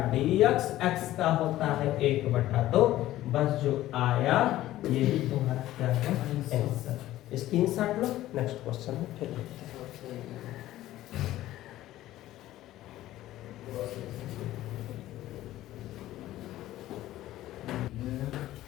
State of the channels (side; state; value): right; quieter; 14.8 dB